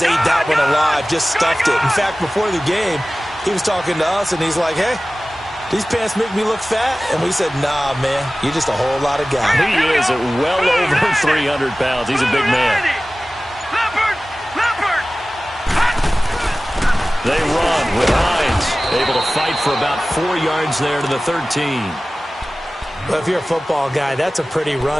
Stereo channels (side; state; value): both; normal; correlation 0.97